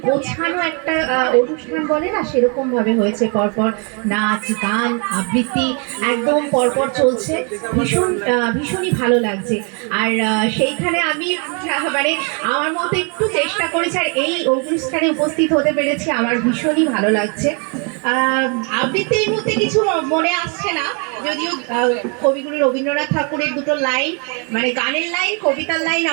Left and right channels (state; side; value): quieter; left; 35.8 dB